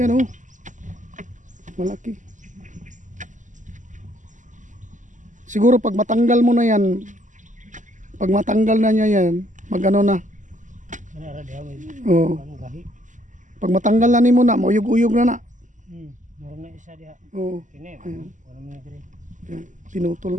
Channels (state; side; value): late; left; 0.37 ms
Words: o. Malaki. Siguro pag matanggal mo na yan, pag matanggal na niya yan, magano na. Oo. Pag matanggal na ni mo na, mauyog-uyog na na. Meron na isa diha. Oo. Kini. Ayan. Wala man diri. Yan.